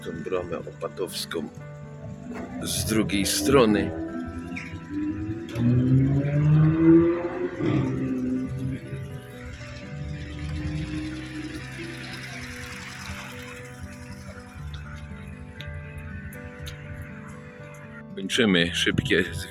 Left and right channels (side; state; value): both; identical; correlation 1.00